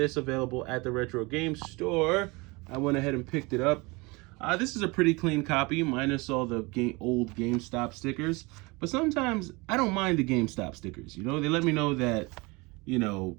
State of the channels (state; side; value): quieter; left; 25.7 dB